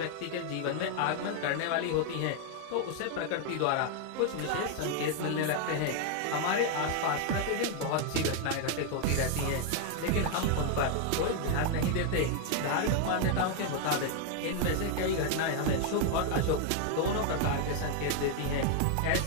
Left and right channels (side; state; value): both; different; correlation 0.00